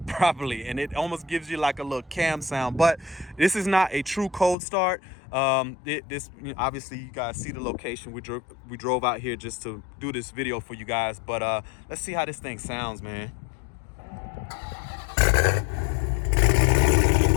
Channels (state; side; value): drops out; right; at 4.5 s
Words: properly, and it almost gives you like a little cam sound. But this is not a true cold start. This obviously, you guys see the location. We drove out here just to do this video for you guys. But let's see how this thing sounds, man.